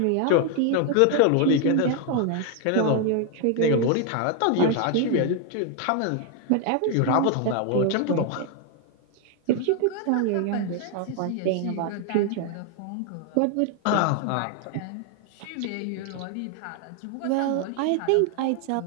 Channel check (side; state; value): both; different; correlation 0.01